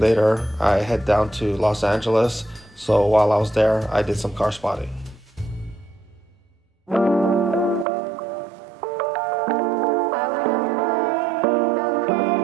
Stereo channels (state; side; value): drops out; left; at 7.9 s